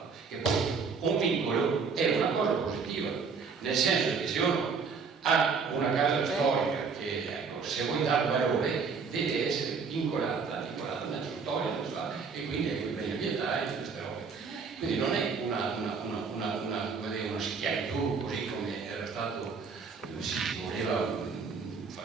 E poi un vincolo è una cosa positiva, nel senso che se uno ha una casa storica che, ecco, se vuoi dare valore deve essere vincolata nella storia, e quindi è quei beni ambientali e queste robe. Quindi non è una schiavitù così come era stato, si voleva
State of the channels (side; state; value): left; quieter; 5.3 dB